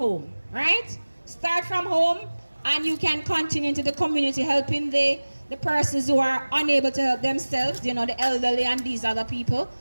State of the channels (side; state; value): both; inverted; correlation -1.00